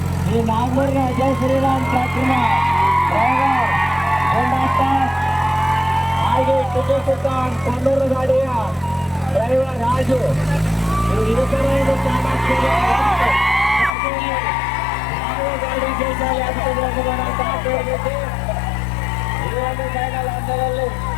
ಈ ನಾಗನೂರಿನ ಜೈ ಶ್ರೀರಾಮ್ ಟ್ರ್ಯಾಕ್ಟರ್ನ ಡ್ರೈವರ್ ಗೊಂಡಾಟ, ಹಾಗೆ ಟಿಪ್ಪು ಸುಲ್ತಾನ್ ಕೊಲ್ಲೂರು ಗಾಡಿಯ ಡ್ರೈವರ್ ರಾಜು, ಇವರು ಗಾಡಿ ಜೈಸಾಲಿ ಆಗ್ತದೆ. ಈ ಒಂದು ಫೈನಲ್ ಹಂತದಲ್ಲಿ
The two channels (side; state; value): right; drops out; at 13.9 s